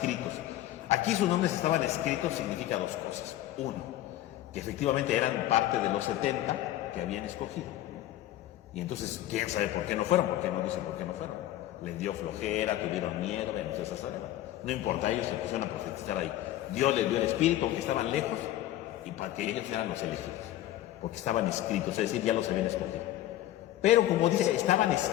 Aquí sus nombres estaban escritos significa dos cosas. Uno, que efectivamente eran parte de los 70 que habían escogido. Y entonces, ¿quién sabe por qué no fueron? ¿Por qué no dicen por qué no fueron? Les dio flojera, tuvieron miedo, entonces no importa, ellos se pusieron a profetizar ahí. Dios les dio el Espíritu, aunque estaban lejos, y para que ellos eran los elegidos, porque estaban escritos, es decir, ya los habían escogido. Pero como dice, estaban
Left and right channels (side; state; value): right; quieter; 13.9 dB